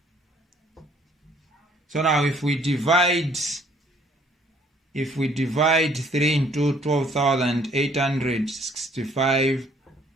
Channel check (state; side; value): normal; both; correlation 0.62